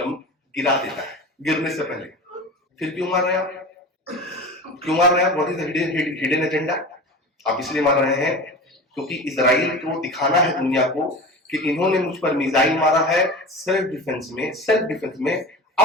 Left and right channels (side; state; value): both; normal; correlation 0.32